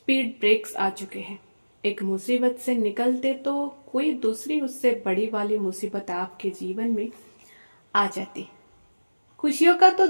ब्रेक्स आ चुके हैं। एक मुसीबत से निकलते तो कोई दूसरी उससे बड़ी वाली मुसीबत आपके जीवन में आ जाती। खुशियों का तो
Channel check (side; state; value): both; inverted; correlation -1.00